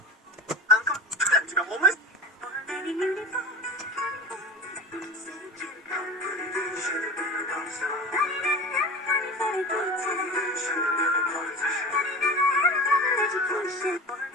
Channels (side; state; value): both; normal; correlation 0.32